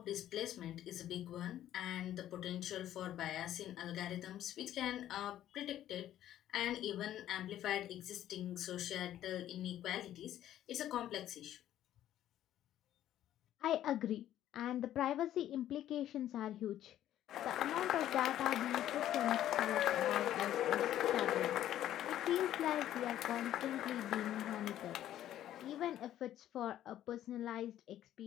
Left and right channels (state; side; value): quieter; right; 12.2 dB